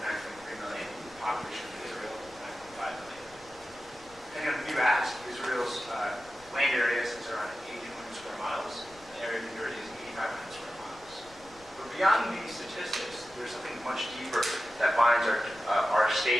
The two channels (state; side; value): noise; left; rumble, 24 dB below the sound